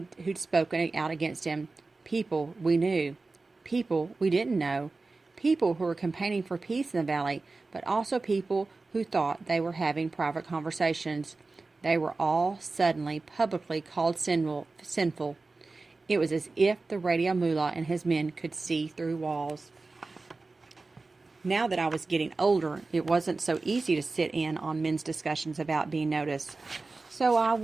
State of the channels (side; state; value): left; quieter; 3.6 dB